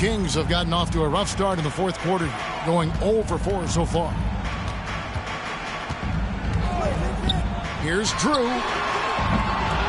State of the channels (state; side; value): identical; both; correlation 1.00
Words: have gotten off to a rough start in the fourth quarter, going 0 for 4 so far. Here's Drew.